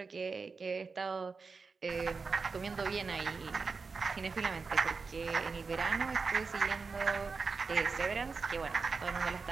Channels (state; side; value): quieter; left; 4.7 dB